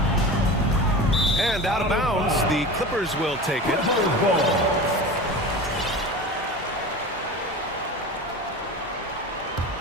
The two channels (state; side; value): normal; both; correlation 0.32